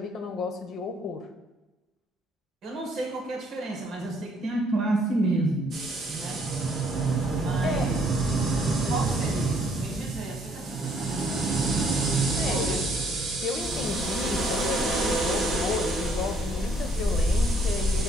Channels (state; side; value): normal; both; correlation 0.65